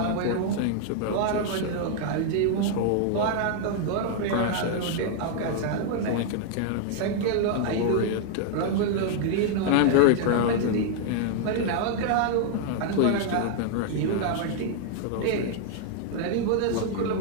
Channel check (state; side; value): different; both; correlation 0.00